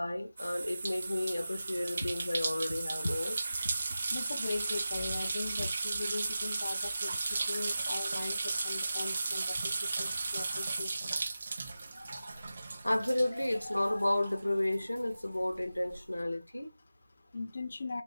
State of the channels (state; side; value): inverted; both; correlation -0.94